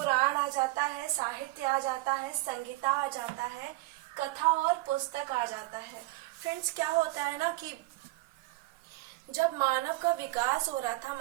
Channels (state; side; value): quieter; left; 20.9 dB